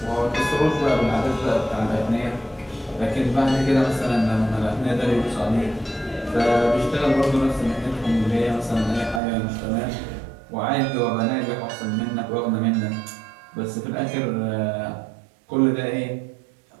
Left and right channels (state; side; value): drops out; left; at 9.2 s